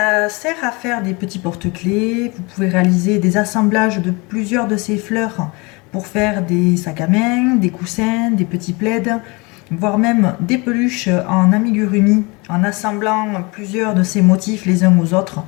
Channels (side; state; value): right; quieter; 27.2 dB